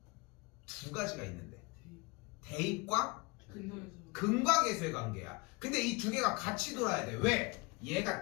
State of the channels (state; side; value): quieter; right; 26.5 dB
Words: 두 가지가 있는데 대입과 근과 계수의 관계야. 근데 이 두 개가 같이 돌아야 돼. 왜? 얘가